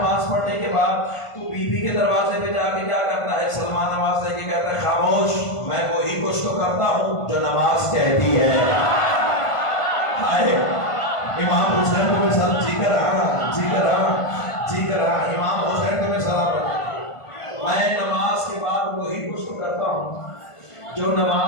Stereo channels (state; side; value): late; right; 1.5 ms